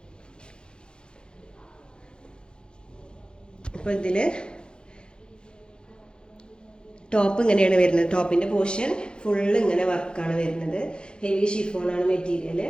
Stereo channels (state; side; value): late; right; 0.049 ms